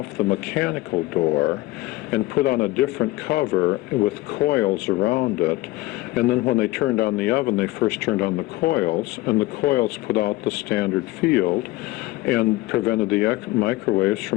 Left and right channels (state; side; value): quieter; right; 18.8 dB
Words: the mechanical door and put on a different cover with coils around it. And then when they turned on the oven, they first turned on the coils, and the coils put out the standard field and prevented the microwaves